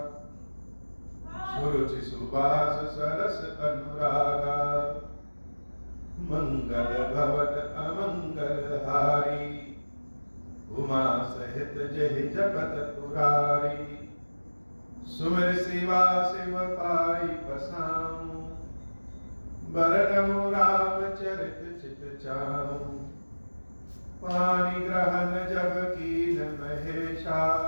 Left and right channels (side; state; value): both; inverted; correlation -1.00